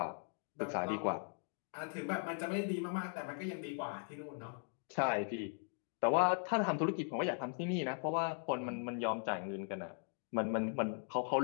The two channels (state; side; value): silent; right; 52 dB below the other